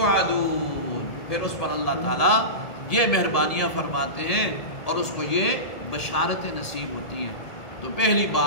پھر اس پر اللہ تعالیٰ یہ مہربانیاں فرماتے ہیں اور اس کو یہ بشارتیں نصیب ہوتی ہیں۔ تو پہلی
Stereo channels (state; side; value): late; right; 1.7 ms